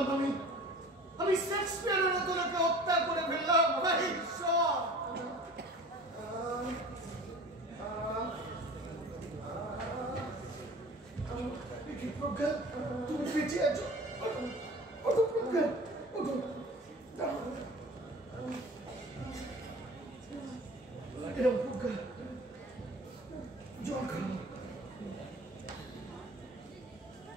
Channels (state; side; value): normal; both; correlation 0.42